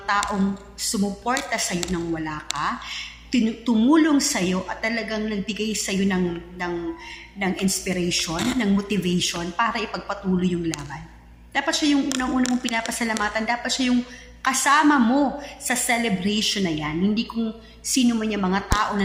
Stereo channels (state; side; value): identical; both; correlation 1.00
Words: taong sumuporta sa'yo nang wala ka, tumulong sa'yo at talagang nagbigay sa'yo ng inspiration, ng motivation para ipagpatuloy yung laban. Dapat siya yung unang-unang mong pinapasalamatan. Dapat siya yung kasama mo sa celebration na yan. Hindi kung sino man yung mga tao na